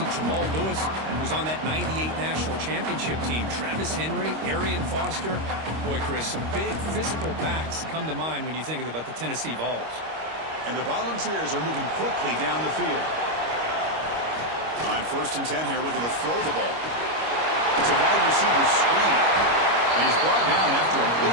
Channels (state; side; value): late; left; 25 ms